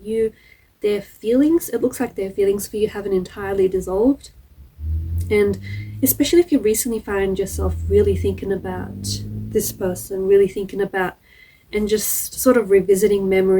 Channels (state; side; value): identical; both; correlation 1.00